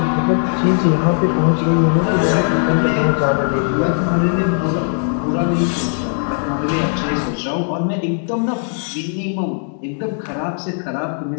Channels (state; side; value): silent; right; 62 dB below the other